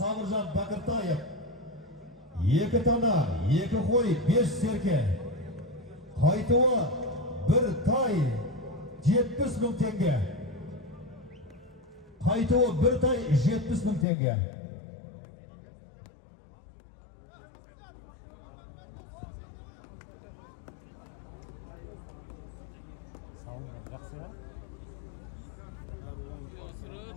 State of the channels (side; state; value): right; drops out; at 14.1 s